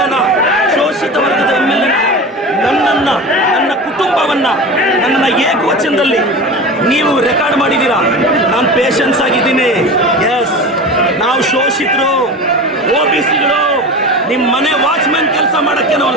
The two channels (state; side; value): normal; both; correlation 0.31